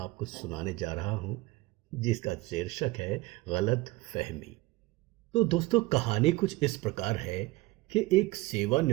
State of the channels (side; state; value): left; quieter; 20.5 dB